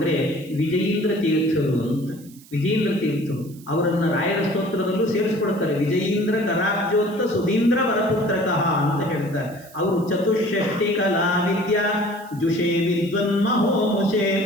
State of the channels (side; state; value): right; noise; hiss, 24 dB below the sound